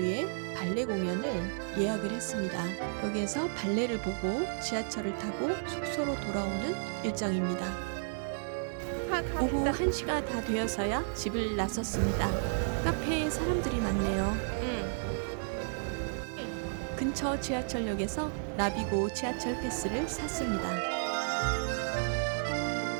발레 공연을 예약을 했습니다. 여기에서 발레를 보고 지하철을 타고 숙소로 돌아오는 일정입니다. 오후 1시가 다 되어서야 집을 나섰습니다. 카페에 사람들이 많네요. 근처 지하철역에서 나비고 지하철 패스를 샀습니다.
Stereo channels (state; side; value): silent; left; 56 dB below the other